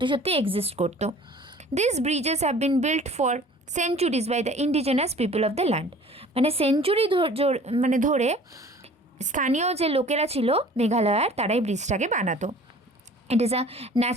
সত্যি এক্সিস্ট করতো। These bridges have been built for centuries by the indigenous people of the land. মানে সেঞ্চুরি মানে ধরে স্থানীয় যে লোকেরা ছিল মেঘালয়ার তারাই ব্রিজটাকে বানাতো। ইট is a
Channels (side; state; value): both; normal; correlation 0.48